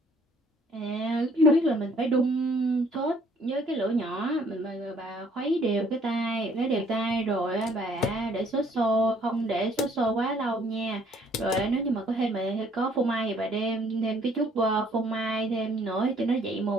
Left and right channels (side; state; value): both; normal; correlation 0.61